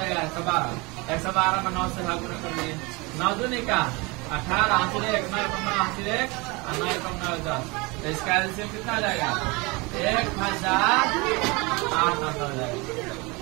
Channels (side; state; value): left; quieter; 26.2 dB